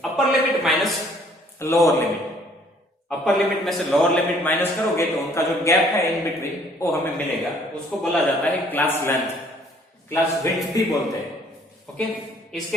upper limit minus lower limit. Upper limit में से लोअर लिमिट माइनस करोगे तो उनका जो गैप है इन बिटवीन वो हमें मिलेगा, उसको बोला जाता है क्लास लेंथ, क्लास विड्थ भी बोलते हैं। ओके, इसके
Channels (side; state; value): both; normal; correlation 0.60